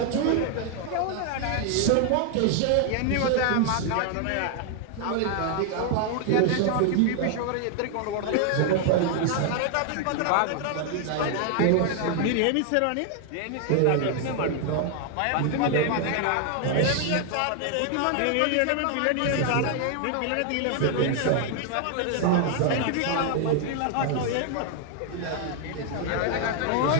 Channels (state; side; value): different; both; correlation 0.00